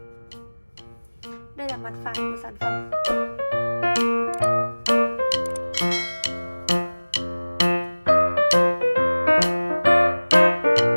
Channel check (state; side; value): inverted; both; correlation -1.00